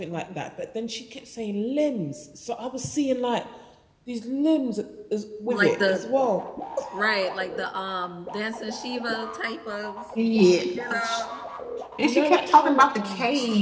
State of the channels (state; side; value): identical; both; correlation 1.00